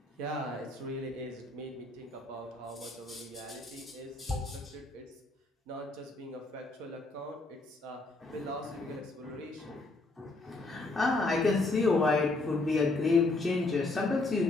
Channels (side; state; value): right; quieter; 3.1 dB